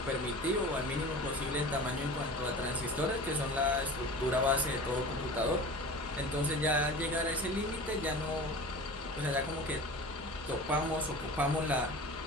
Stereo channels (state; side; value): normal; both; correlation 0.36